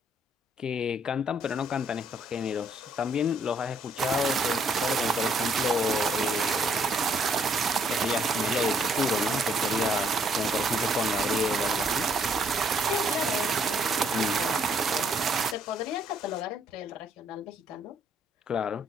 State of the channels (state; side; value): normal; both; correlation 0.68